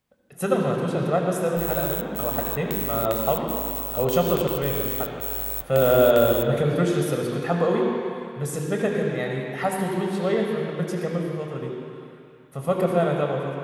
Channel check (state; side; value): identical; both; correlation 1.00